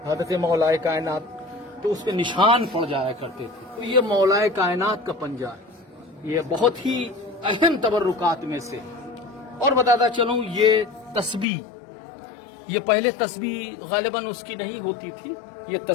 حضرت مولا کائنات تو اس پہ نشان پڑ جایا کرتے تھے. تو یہ مولا کائنات کا پنجہ ہے. یہ بہت ہی اہم تبرکات میں سے. اور بتاتا چلوں یہ تسبیح، یہ پہلے تسبیح غالباً اس کی نہیں ہوتی تھی. یہ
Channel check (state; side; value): drops out; right; at 11.5 s